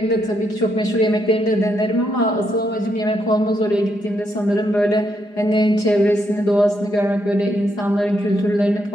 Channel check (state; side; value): late; right; 4.9 ms